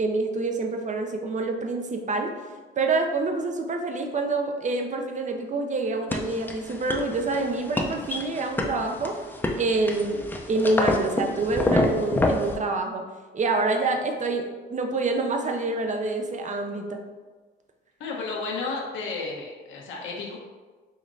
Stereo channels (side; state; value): both; normal; correlation 0.43